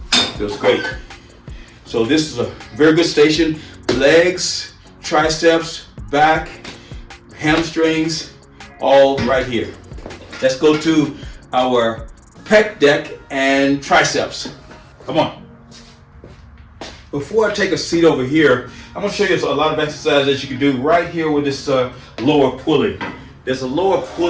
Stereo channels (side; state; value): both; identical; correlation 1.00